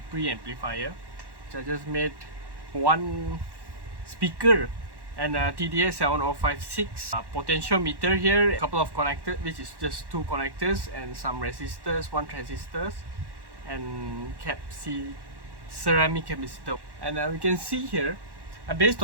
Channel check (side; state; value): left; late; 1.1 ms